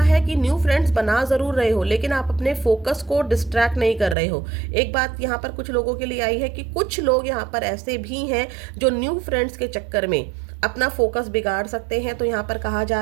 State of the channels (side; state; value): left; drops out; at 4.2 s